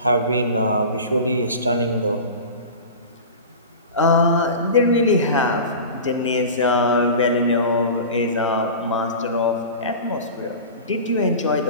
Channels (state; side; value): inverted; both; correlation -0.33